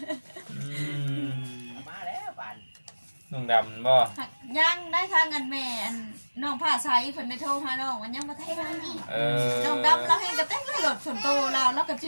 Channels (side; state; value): both; inverted; correlation -1.00